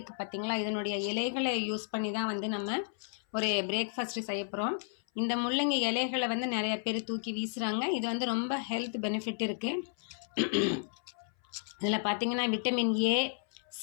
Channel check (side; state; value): right; silent; 56 dB below the other